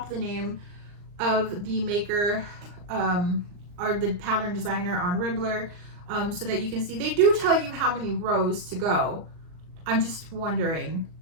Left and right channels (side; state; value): left; late; 39 ms